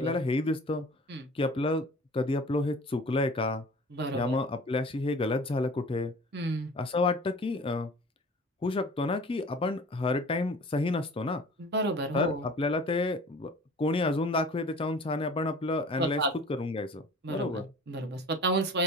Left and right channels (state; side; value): normal; both; correlation 0.44